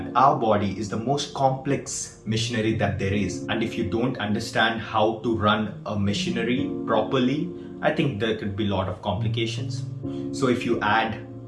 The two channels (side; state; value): both; identical; correlation 1.00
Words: our body is the most complex machinery that there is. And if you don't understand how to run a machinery properly, I think there could be a lot of complications. So if you add